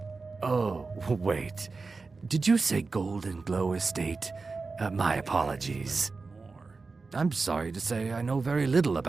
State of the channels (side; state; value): left; quieter; 4.1 dB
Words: Oh, wait. Did you say Golden Glow Estate? My apologies. I'm sorry to say I know very little